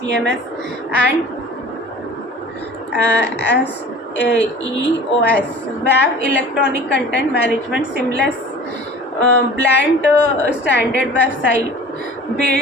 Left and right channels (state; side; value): normal; both; correlation 0.43